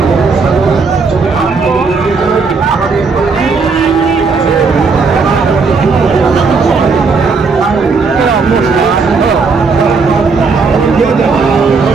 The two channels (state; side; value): quieter; left; 4.6 dB